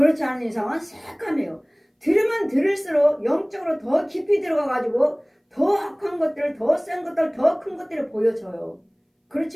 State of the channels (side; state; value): both; identical; correlation 1.00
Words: 않은 이상은 새카매요. 들으면 들을수록 영적으로 더 깊이 들어가가지고 더 악한 것들, 더 센 것들, 더 큰 것들이 보여져요. 그렇지